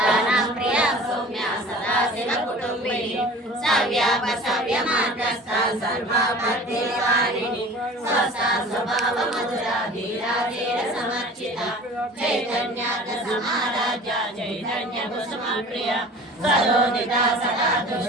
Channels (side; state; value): both; normal; correlation 0.43